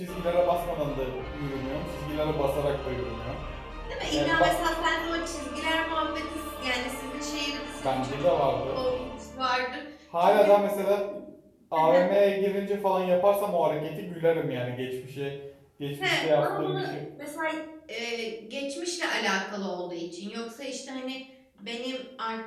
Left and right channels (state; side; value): identical; both; correlation 1.00